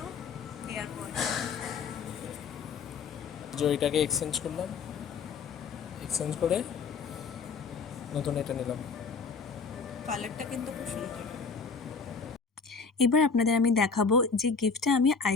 এয়ারপড। যে ওইটাকে এক্সচেঞ্জ করলাম, এক্সচেঞ্জ করে নতুন এটা নিলাম। কালারটা কিন্তু খুব সুন্দর। এবার আপনাদের আমি দেখাবো যে গিফটটা আমি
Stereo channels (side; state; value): right; quieter; 5.1 dB